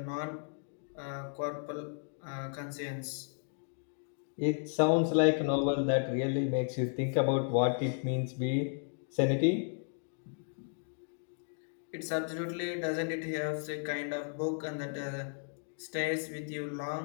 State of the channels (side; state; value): right; silent; digital silence